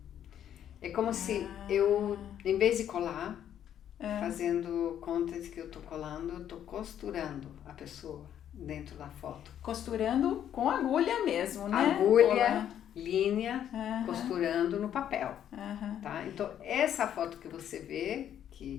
É como se eu, em vez de colar, fazendo conta de que eu tô colando, eu tô costurando a pessoa dentro da foto. Costurando com agulha mesmo, né? Agulha, linha, costurando no papel. Tá? Então, essa foto que você vê,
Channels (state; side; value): quieter; right; 10.1 dB